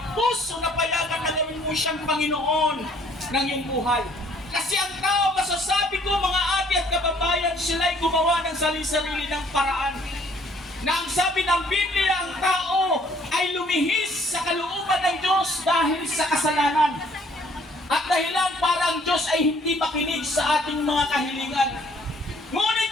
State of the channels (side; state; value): both; normal; correlation 0.61